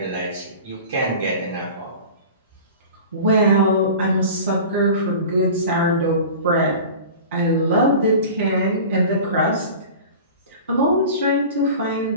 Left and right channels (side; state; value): both; inverted; correlation -0.37